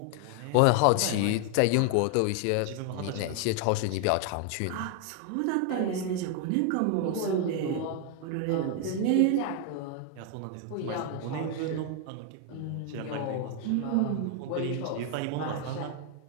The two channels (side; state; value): both; different; correlation 0.00